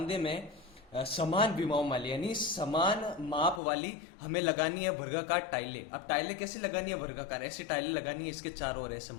में समान विमाओं वाली यानी समान माप वाली हमें लगानी है वर्गाकार टाइलें। अब टाइलें कैसे लगानी है, वर्गाकार ऐसी टाइलें लगानी है, इसके चारों ओर ऐसे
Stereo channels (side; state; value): right; drops out; at 3.6 s